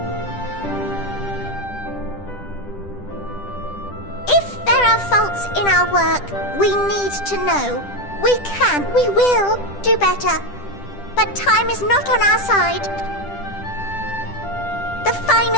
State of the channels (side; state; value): right; late; 10 ms